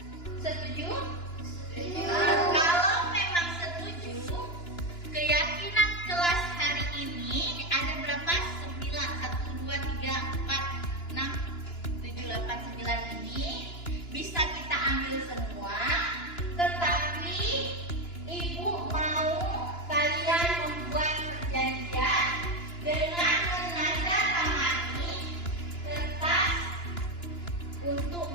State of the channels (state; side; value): late; right; 2.9 ms